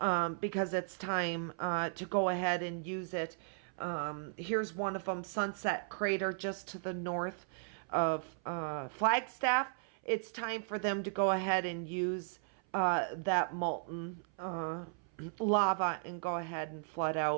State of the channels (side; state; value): left; silent; 54 dB below the other